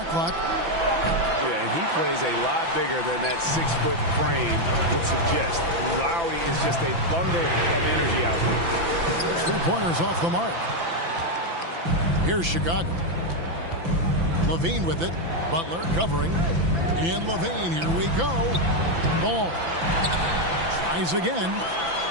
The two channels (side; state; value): left; late; 5.9 ms